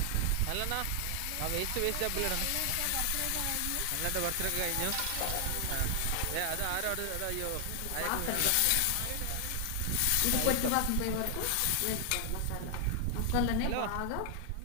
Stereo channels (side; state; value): both; different; correlation 0.00